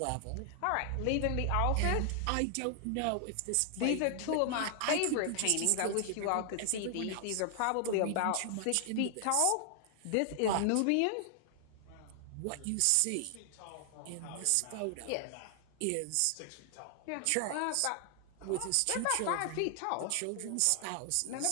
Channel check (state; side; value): different; both; correlation 0.00